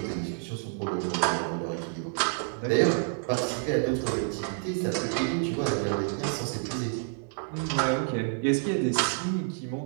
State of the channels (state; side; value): silent; left; 59 dB below the other